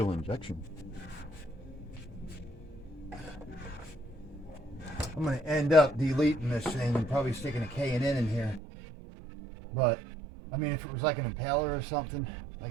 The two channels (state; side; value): drops out; left; at 8.6 s